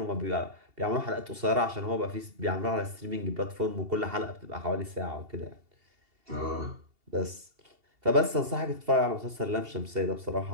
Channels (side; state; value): left; late; 2.7 ms